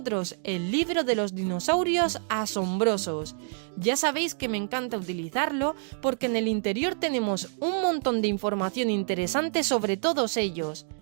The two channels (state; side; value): silent; left; 60 dB below the other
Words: el libro de los dinosaurios asombrosos. Ya sabéis que me encanta utilizarlo porque en el interior tenemos un montón de información interesante sobre todos ellos.